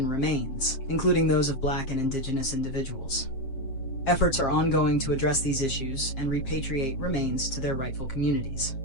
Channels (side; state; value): right; late; 7.5 ms